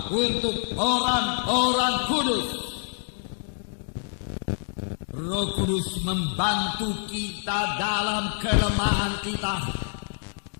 untuk orang-orang kudus. Roh Kudus membantu kita dalam kelemahan kita.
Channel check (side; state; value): right; silent; 60 dB below the other